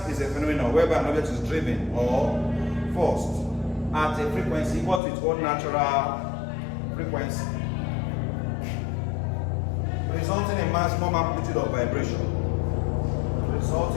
is a phenomenon whereby an object is driven or forced at a frequency equal to its own natural frequency, resulting in maximum amplitude of vibration.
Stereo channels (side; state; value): right; drops out; at 5.0 s